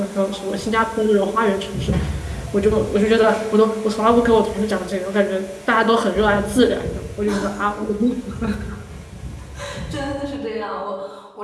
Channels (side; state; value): both; identical; correlation 1.00